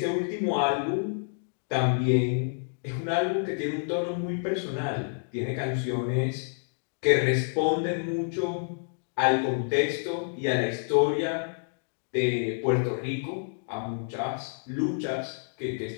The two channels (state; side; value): silent; right; digital silence